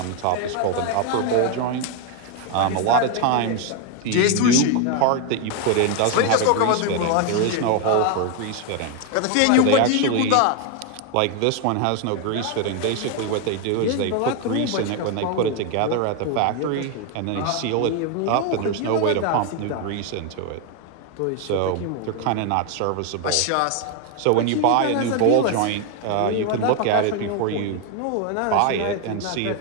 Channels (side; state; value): both; different; correlation 0.01